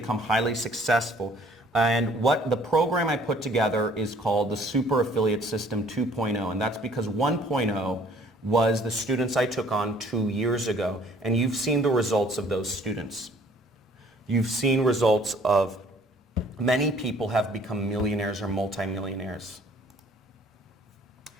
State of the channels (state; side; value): normal; both; correlation 0.57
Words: highly successful. And what the program I put together is called the Super Affiliate System 2.0, and that's because 1.0 was the students I took on 2 years ago, and you've seen the results of those students. You've seen results of many people have become millionaires or multimillionaires.